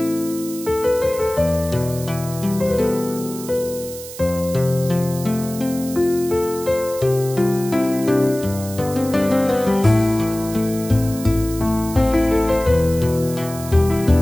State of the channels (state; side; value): noise; right; hiss, 13 dB below the sound